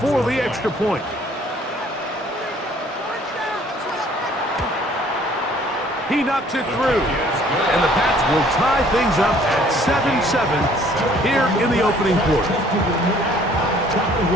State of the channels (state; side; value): normal; both; correlation 0.58